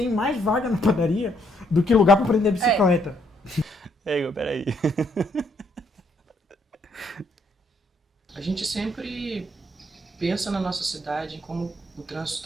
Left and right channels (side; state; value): both; normal; correlation 0.71